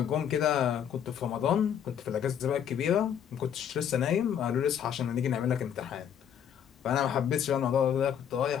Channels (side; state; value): right; quieter; 8.9 dB